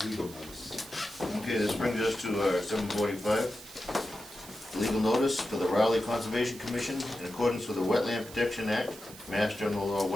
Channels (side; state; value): right; noise; hiss, 16 dB below the sound